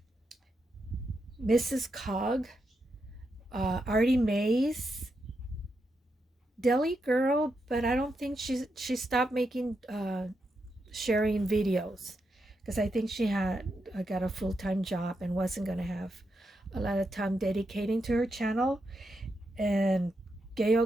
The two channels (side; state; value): both; normal; correlation 0.84